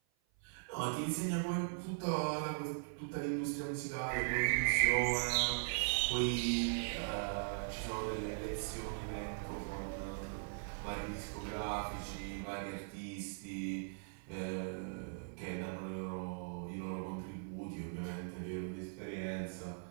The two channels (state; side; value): silent; left; 51 dB below the other